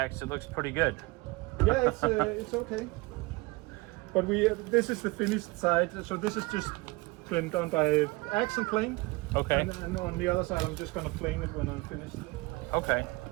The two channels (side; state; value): left; quieter; 24.0 dB